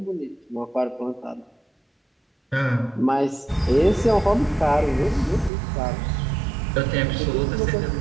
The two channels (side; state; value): left; drops out; at 5.5 s